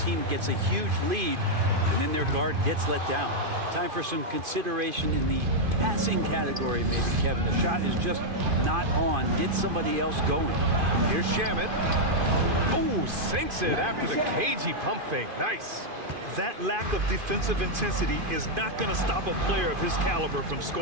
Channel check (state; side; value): late; left; 2.5 ms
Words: gets a huge lead, and then their guard gets let down. Time for some consideration in the passing category, maybe, Kevin. The shot is just not on. Get somebody else going. Here's Shaman. Oh, sinks it after the cagey pump fake. Nice. That lack of defensive intensity is not going to stop a player of his caliber from